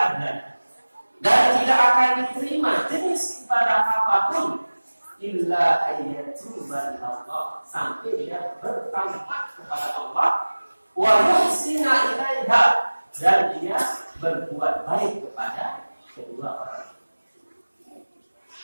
adlan, dan tidak akan diterima jenis ibadah apapun illa ayyatuba ilallah, sampai dia bertaubat kepada Allah, wa yuhsina ilaiha, dan dia berbuat baik kepada kedua orang.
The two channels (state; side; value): inverted; both; correlation -1.00